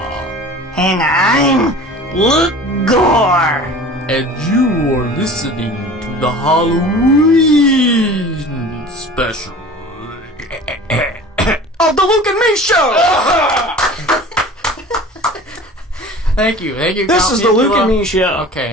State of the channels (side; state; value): both; normal; correlation 0.41